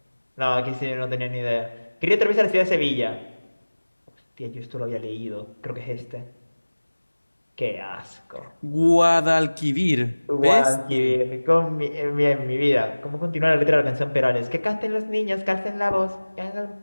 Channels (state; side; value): inverted; both; correlation -1.00